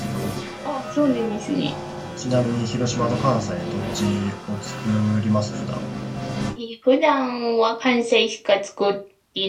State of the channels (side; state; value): both; identical; correlation 1.00